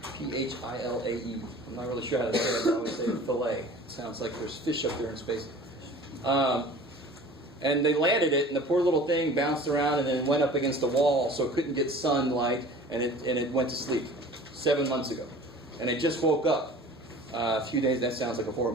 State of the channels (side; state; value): both; normal; correlation 0.43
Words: Philae. I'm not really sure how to say it, but I always say Philae. It sounds like there's fish up there in space. And they landed it, and the poor little thing bounced around and then went up against the wall, so it couldn't get sunlight, and it went to sleep 7 months ago. And it just woke up a few days. That sounds like a horror